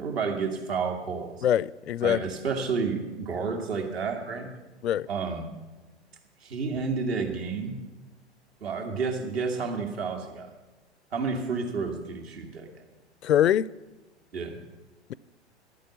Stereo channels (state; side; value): normal; both; correlation 0.41